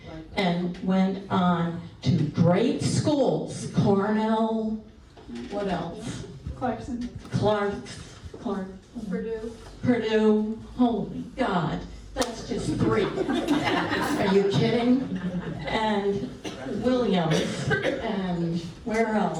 and went on to great schools, Cornell, what else? Clark, Purdue, holy God, that's just 3. Are you kidding? And Williams, and where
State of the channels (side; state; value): both; identical; correlation 1.00